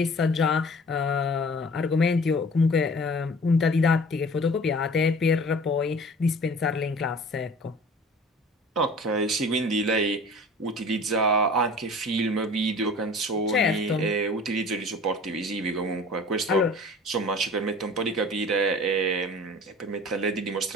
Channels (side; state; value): both; normal; correlation 0.44